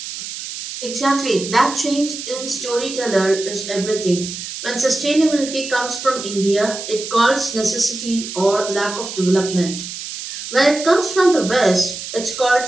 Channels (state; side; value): noise; right; hiss, 9 dB below the sound